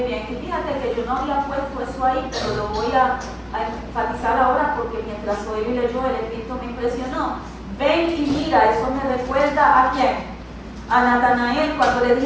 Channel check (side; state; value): both; identical; correlation 1.00